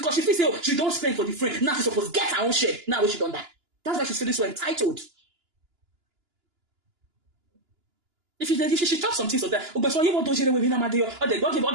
she feels say she don't spend for the friend. Now she's supposed to get her own share. Now when she done that. That's why she's feeling so entitled. If she talk some things of that, but so you want to share with me, or they don't give all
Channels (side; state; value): left; late; 2.9 ms